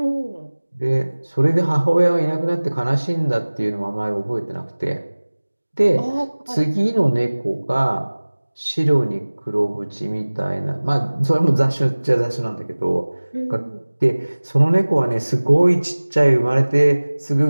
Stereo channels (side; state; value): both; inverted; correlation -1.00